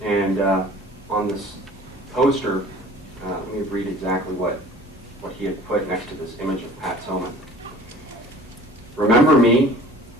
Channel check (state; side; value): normal; both; correlation 0.47